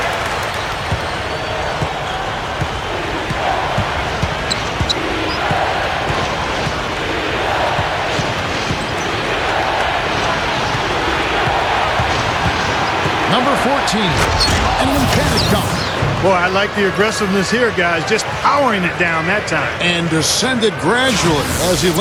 Number 14, and an emphatic dunk. Boy, I like the aggressiveness here, guys. Just powering it down that time. And descended gradually as he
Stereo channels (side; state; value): both; identical; correlation 1.00